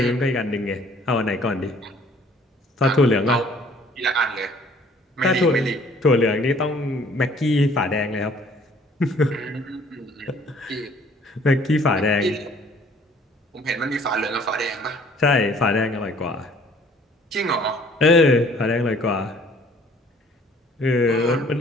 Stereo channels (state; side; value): normal; both; correlation 0.56